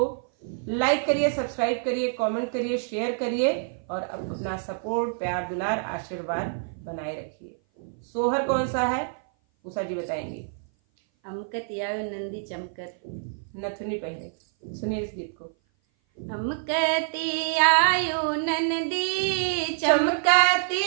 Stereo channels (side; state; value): left; silent; 56 dB below the other